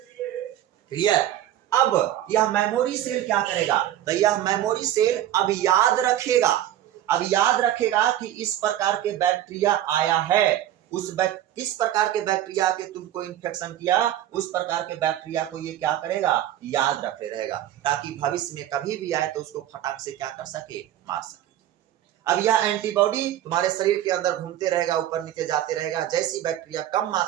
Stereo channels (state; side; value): quieter; left; 12.3 dB